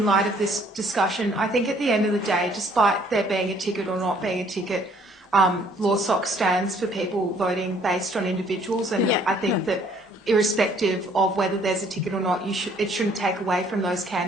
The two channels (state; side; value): normal; both; correlation 0.61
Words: light of this discussion. I think at the end of the day, despite there being a ticket or not being a ticket, LawSoc stands for people voting based on individuals, and I think that irrespective of whether there's a ticket or not, it shouldn't take away from those